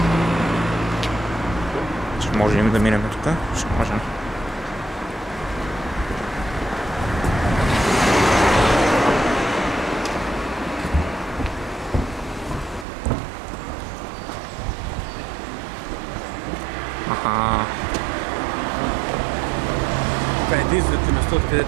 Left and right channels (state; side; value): drops out; left; at 12.9 s